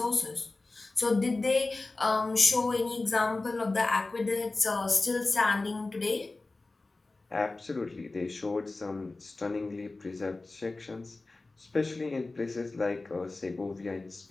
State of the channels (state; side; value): quieter; right; 3.3 dB